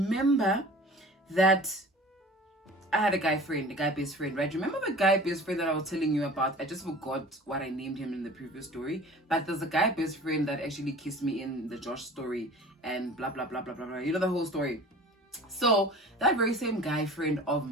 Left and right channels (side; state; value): both; normal; correlation 0.42